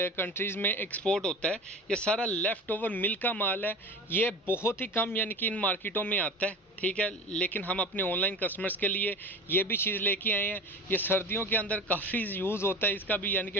में एक्सपोर्ट होता है। ये सारा लेफ़्ट ओवर मिल का माल है। ये बहुत ही कम यानी कि इन मार्केटों में आता है, ठीक है, लेकिन हम अपने ऑनलाइन कस्टमर्स के लिए ये भी चीज़ लेके आए हैं। ये सर्दियों के अंदर काफ़ी यूज़ होता है इसका भी, यानी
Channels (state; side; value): normal; both; correlation 0.34